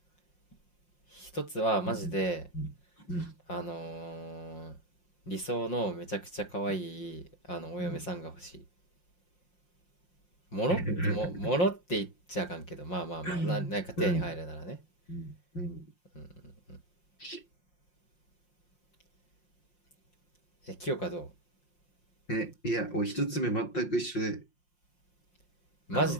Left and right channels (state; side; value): late; right; 5.6 ms